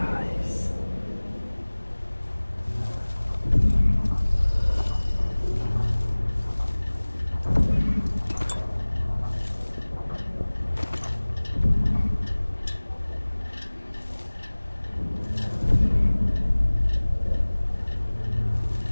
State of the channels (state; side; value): inverted; both; correlation -1.00